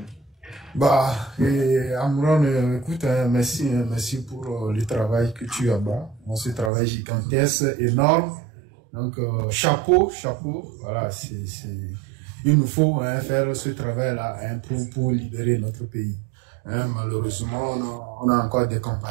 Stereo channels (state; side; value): drops out; left; at 6.7 s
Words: Bah, Amron, écoute, merci pour le travail que tu as bas. Ce travail gigantesque, énorme. Donc, chapeau. Voilà, il nous faut faire ce travail-là pour libérer notre pays. Malheureusement, on a encore des